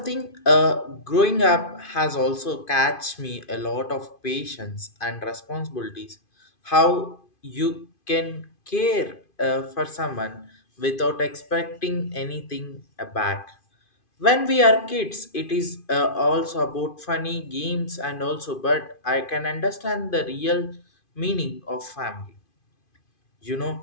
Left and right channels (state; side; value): late; right; 2.5 ms